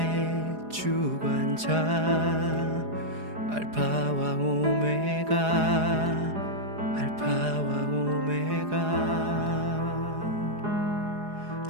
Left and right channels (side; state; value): left; late; 4.9 ms